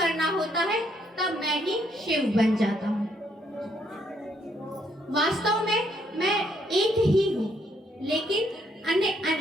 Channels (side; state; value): both; normal; correlation 0.71